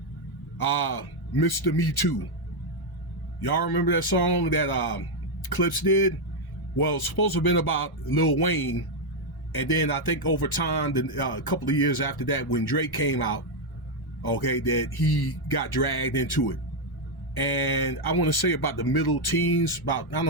Mr. Me Too. Y'all remember that song that Clips did? Well, it's supposed to have been about Lil Wayne. And then I think over time, a couple of years after that, when Drake came out, okay, that he got dragged into it. And I want to say about the middle teens, about, I don't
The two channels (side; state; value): both; normal; correlation 0.02